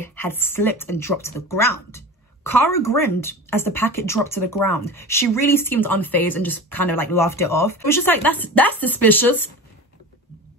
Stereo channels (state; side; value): normal; both; correlation 0.32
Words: had slipped and dropped to the ground. Cara grinned as the packet dropped to the ground. She really seemed unfazed and just kind of like laughed it off. It was just like, that's suspicious.